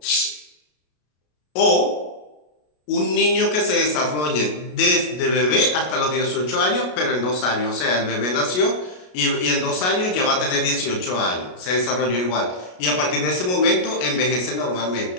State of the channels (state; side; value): late; right; 33 ms